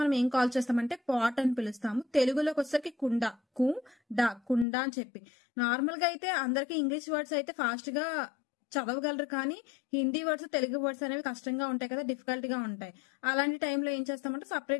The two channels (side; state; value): right; drops out; at 4.7 s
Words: ఏం కాల్ చేస్తామంటే పాట్ అని పిలుస్తాము. తెలుగులోకి వచ్చేసరికి కుండ, కుండ అని చెప్పి. నార్మల్ గా అయితే అందరికి ఇంగ్లీష్ వర్డ్స్ అయితే ఫాస్ట్ గా చదవగలరు, కానీ హిందీ వర్డ్స్ తెలుగు వర్డ్స్ అనేవి కష్టంగా ఉంటాయి కదా, డిఫికల్ట్ గా ఉంటాయి. అలాంటి టైంలో ఏం చేస్తామంటే